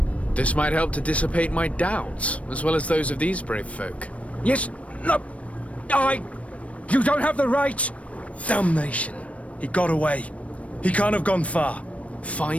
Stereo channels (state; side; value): late; right; 0.064 ms